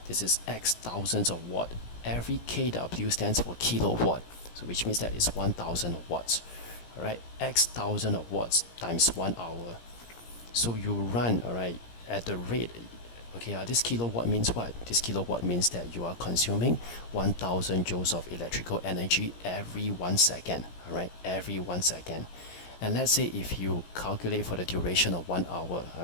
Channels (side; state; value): right; late; 17 ms